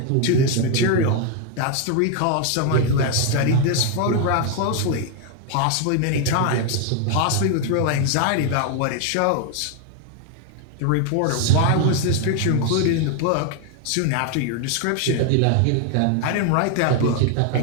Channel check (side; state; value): both; different; correlation 0.01